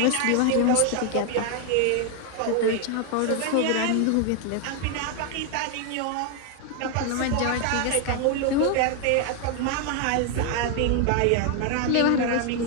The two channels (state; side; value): different; both; correlation 0.01